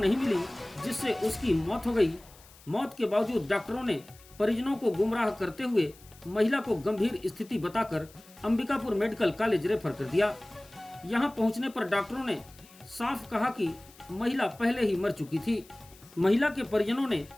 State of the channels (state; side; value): noise; left; hiss, 24 dB below the sound